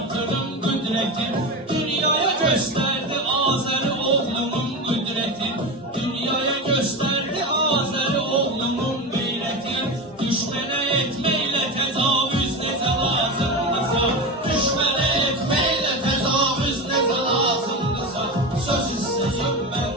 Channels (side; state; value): both; normal; correlation 0.22